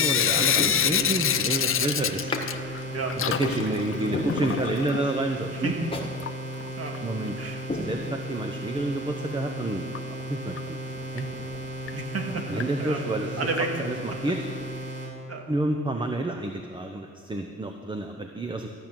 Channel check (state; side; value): normal; both; correlation 0.37